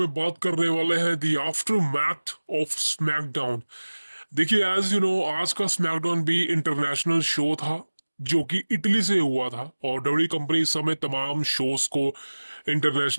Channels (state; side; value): inverted; both; correlation -1.00